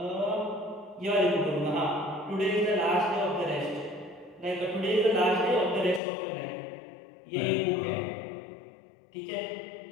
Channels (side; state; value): right; drops out; at 6.0 s